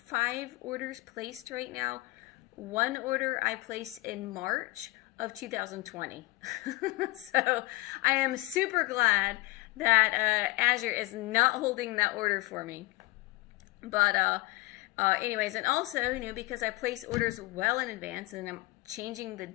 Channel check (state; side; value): quieter; right; 21.2 dB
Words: orders placed right now. One order I placed in March of 2020. So I am super glad that Azure is not holding that order for me. But anyways, and also, because I place orders well in advance and I'm changing the